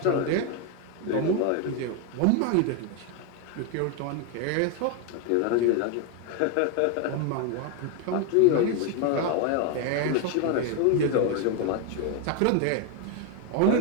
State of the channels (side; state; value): both; different; correlation 0.01